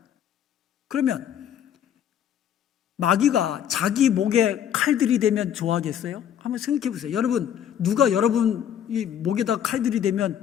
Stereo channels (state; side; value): quieter; right; 9.6 dB